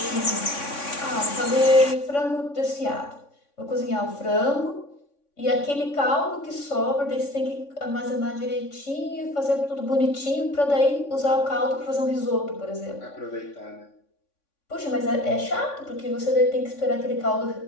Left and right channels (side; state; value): right; late; 3.6 ms